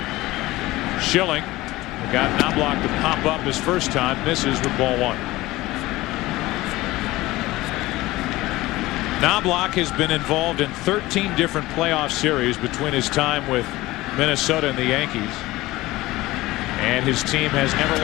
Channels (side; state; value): right; quieter; 18.6 dB